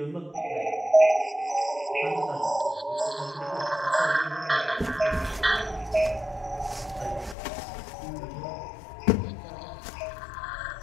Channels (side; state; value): right; drops out; at 7.4 s